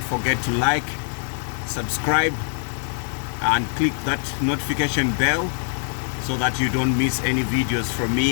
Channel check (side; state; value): right; silent; digital silence